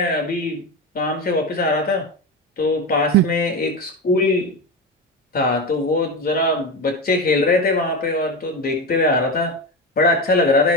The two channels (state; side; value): normal; both; correlation 0.19